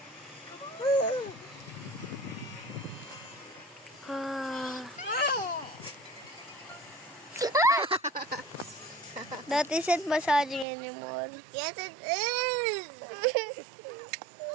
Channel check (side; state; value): left; drops out; at 10.7 s